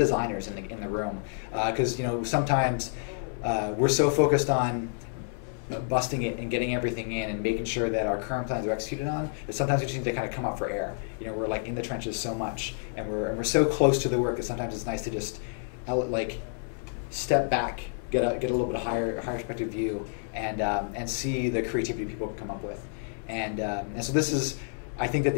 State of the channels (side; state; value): right; silent; 59 dB below the other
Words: in the room. Because, sometimes we're so focused on busting it and getting everything in and making sure that our current plans are executed on, but sometimes we just need to kind of come up for air. We're like in the trenches so much, and we're so close to the work that sometimes it's nice to just like step back, get a little bit of higher perspective view, and see the creativity people can come up with. And so this is I think that